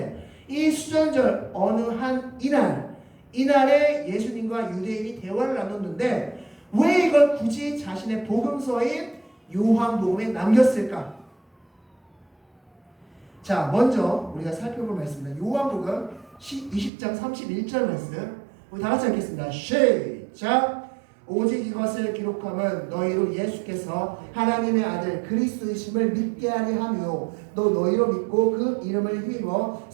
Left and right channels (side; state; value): left; drops out; at 16.9 s